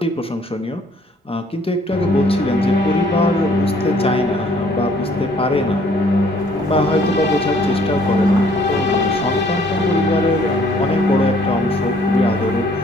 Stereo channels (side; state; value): both; normal; correlation 0.61